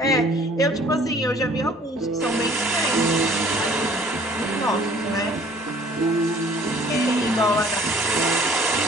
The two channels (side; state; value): both; normal; correlation 0.54